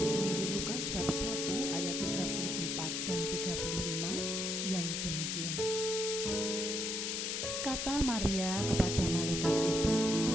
Injil Lukas bab 1 ayat 34 dan 35 yang demikian. Kata Maria kepada malaikat itu,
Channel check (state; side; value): noise; left; hiss, 1 dB below the sound